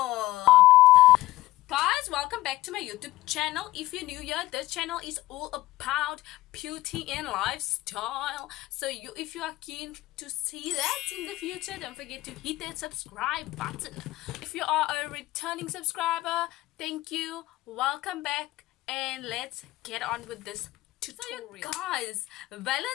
Guys, welcome back to my YouTube channel. If you're new here, this channel is all about beauty and lifestyle. So if you are keen to see that in the future, don't forget to hit that subscribe button. If you are a returning subscriber, thank you, welcome back, and let's get on with this tutorial. So guys,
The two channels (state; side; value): quieter; right; 17.3 dB